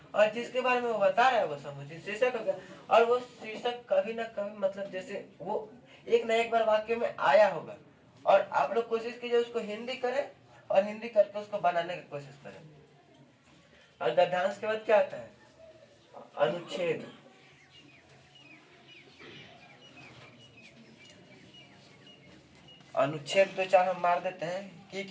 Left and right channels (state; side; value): identical; both; correlation 1.00